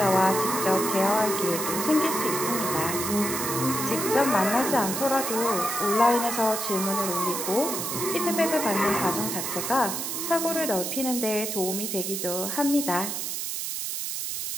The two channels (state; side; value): noise; right; hiss, 3 dB below the sound